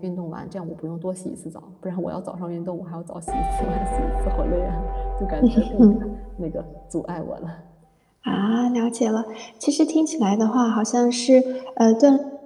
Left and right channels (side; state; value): both; identical; correlation 1.00